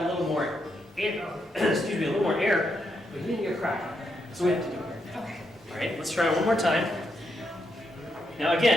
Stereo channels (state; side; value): normal; both; correlation 0.80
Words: a little more air, excuse me, a little more air, but you didn't get cracked. So we have to do it. Okay. All right, let's try it one more time. Now